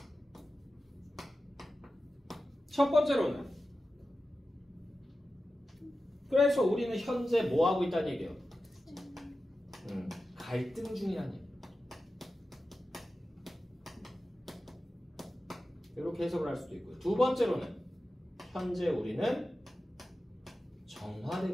첫 번째로는 그래서 우리는 현재 뭐 하고 있다는 얘기예요? 갈등 중이라는 얘기. 이렇게 해석을 할 수도 있고요. 두 번째로는 현재 우리는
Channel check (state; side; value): normal; both; correlation 0.93